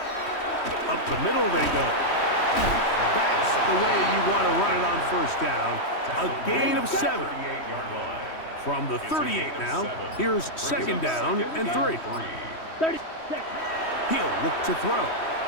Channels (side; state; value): right; late; 3.1 ms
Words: Up the middle they go. That's the way you want to run it on 1st down. A gain of 7. 38-yard line. From the 38 now, here's 2nd down and 3. 36. He'll look to throw.